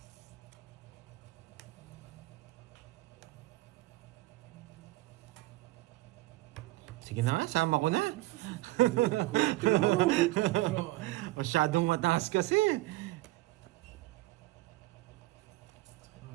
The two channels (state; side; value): quieter; left; 19.9 dB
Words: Sige na nga, sama ko na. Masyadong mataas kasi.